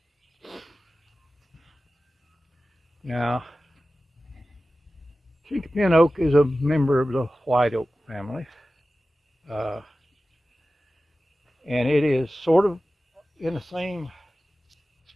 Now, chinky pin oak is a member of the white oak family, and it is sort of in the same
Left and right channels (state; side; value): normal; both; correlation 0.95